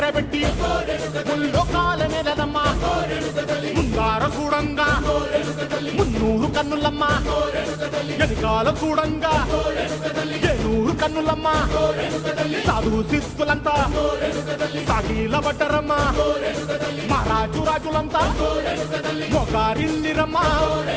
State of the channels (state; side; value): identical; both; correlation 1.00